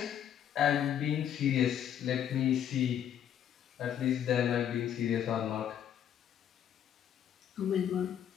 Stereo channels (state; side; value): quieter; right; 9.6 dB